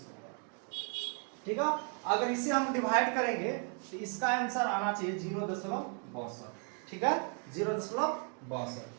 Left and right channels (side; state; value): left; quieter; 39.8 dB